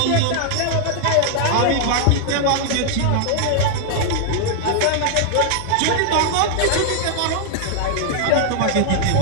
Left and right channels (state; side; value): different; both; correlation 0.00